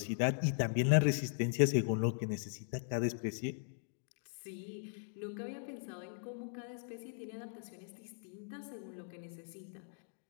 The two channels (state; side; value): silent; right; digital silence